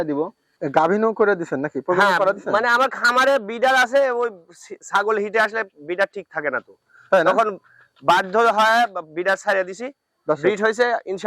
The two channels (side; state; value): both; identical; correlation 1.00